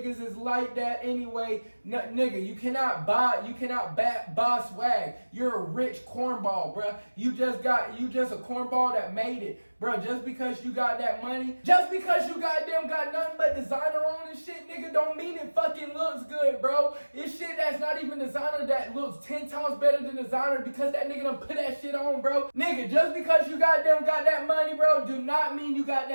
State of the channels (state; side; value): inverted; both; correlation -1.00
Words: is like that anyway. Nigga, you cannot buy swag. You're a rich cornball, bruh. You just a cornball that made it. Bro, just because you got that money, just because you got nothing but designer on and shit, nigga, don't mean it fucking looks good, bro. It's shit that's not even designer that looks 10 times better than designer because that nigga done put that shit on, bro. Nigga, just because you got that money, bro, do not mean you got